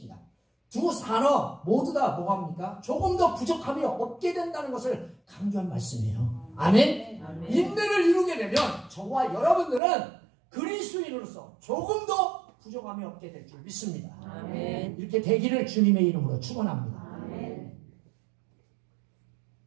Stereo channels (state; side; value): drops out; left; at 9.8 s